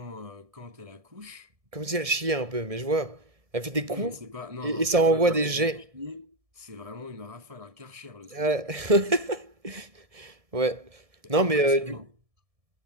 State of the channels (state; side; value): late; left; 1.7 ms